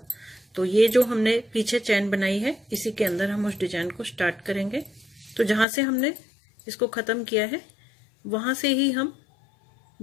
तो ये जो हमने पीछे चेन बनाई है इसी के अंदर हम उस डिजाइन को स्टार्ट करेंगे। तो जहां से हमने इसको खत्म किया है वहां से ही हम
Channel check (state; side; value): drops out; right; at 5.7 s